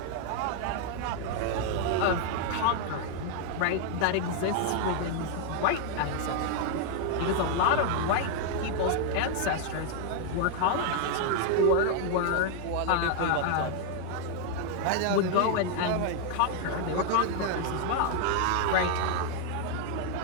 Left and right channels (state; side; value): different; both; correlation 0.00